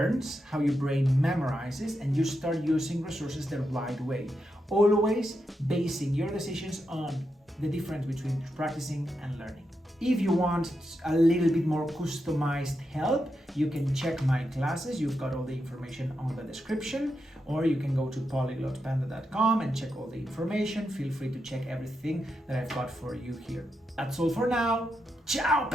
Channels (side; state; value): both; normal; correlation 0.85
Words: how your brain memorizes, and you start using resources the right way. always basing your decisions on the difference between practicing and learning. If you want a little bit more customized help, you can check my classes. You've got all the information on the description, or you can go to polyglotpanda.com and check all the information. Feel free to check everything that I've got for you here. That's all for now. Ciao,